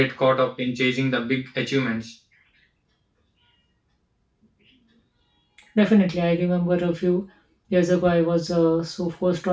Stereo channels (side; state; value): both; identical; correlation 1.00